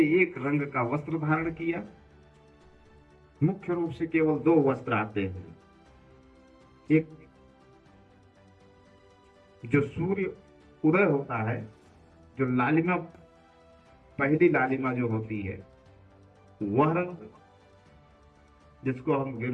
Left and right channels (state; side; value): identical; both; correlation 1.00